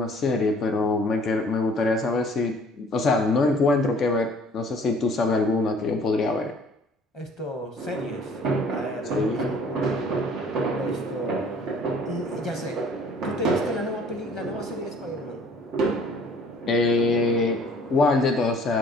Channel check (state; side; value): normal; both; correlation 0.55